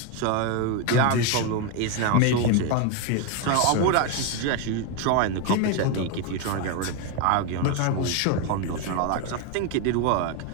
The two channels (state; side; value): different; both; correlation 0.02